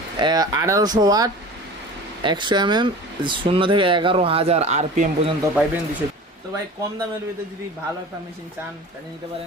1800 ওয়াট, 100 mm, 0 থেকে 11,000 RPM পর্যন্ত পাইবেন 200। তো ভাই কম দামের ভিতরে যদি ভালো একটা মেশিন চান তাহলে নিতে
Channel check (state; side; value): normal; both; correlation 0.37